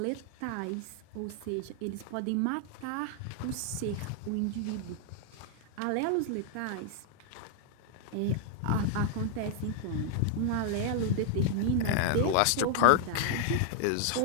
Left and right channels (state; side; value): different; both; correlation 0.00